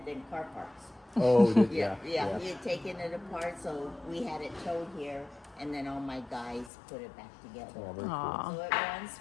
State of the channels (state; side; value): drops out; right; at 6.7 s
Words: than car parts. Oh, Yeah. He had taken it apart, so we had it towed here, and then all my guys put it back together. Oh, very cool. Aw. So it runs,